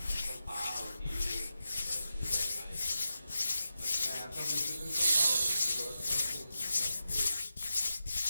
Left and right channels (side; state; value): both; inverted; correlation -0.91